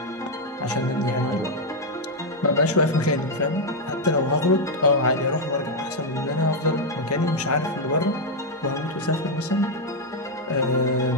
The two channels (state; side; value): normal; both; correlation 0.01